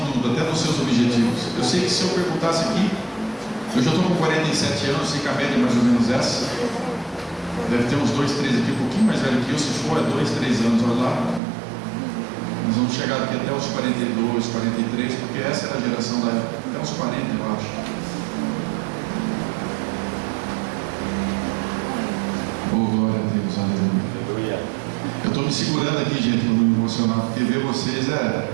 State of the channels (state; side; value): drops out; left; at 11.4 s